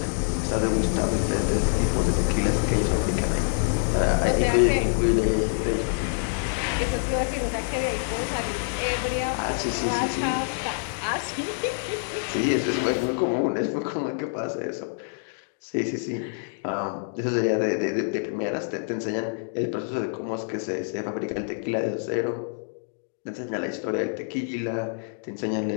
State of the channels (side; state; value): right; silent; digital silence